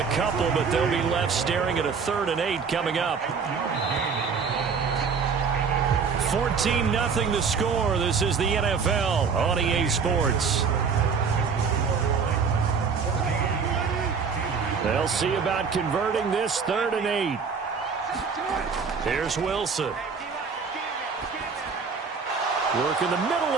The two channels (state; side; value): quieter; left; 5.7 dB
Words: couple, but they'll be left staring at a 3rd and 8 coming up. 14-0 the score. This is the NFL on EA Sports. They'll see about converting this 3rd and 8. Here's Wilson. Work in the middle